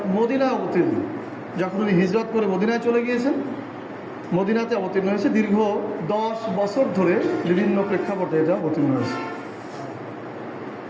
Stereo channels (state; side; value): identical; both; correlation 1.00